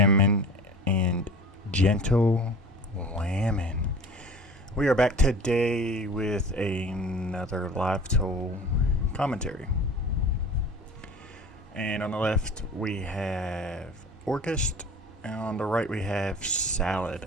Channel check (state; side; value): normal; both; correlation 0.41